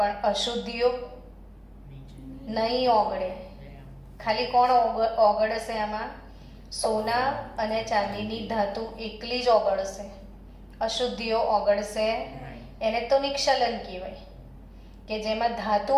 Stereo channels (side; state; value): both; identical; correlation 1.00